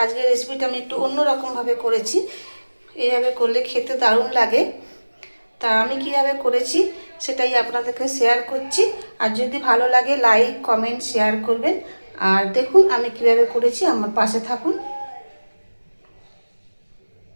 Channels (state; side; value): inverted; both; correlation -1.00